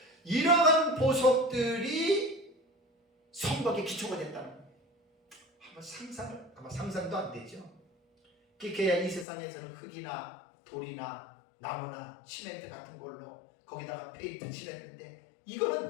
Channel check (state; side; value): drops out; right; at 9.2 s